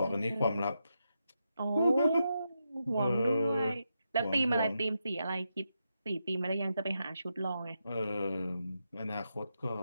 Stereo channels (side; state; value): both; inverted; correlation -0.85